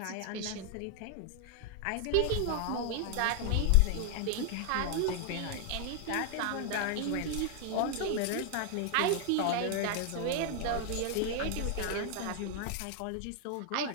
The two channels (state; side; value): different; both; correlation 0.00